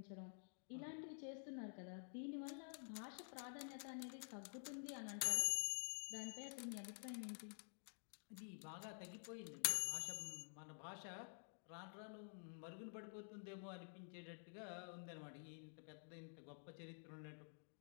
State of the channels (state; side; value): silent; right; digital silence